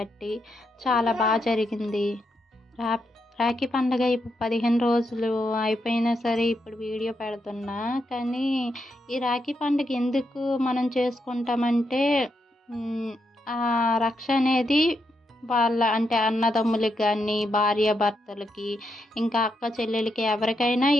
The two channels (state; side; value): normal; both; correlation 0.82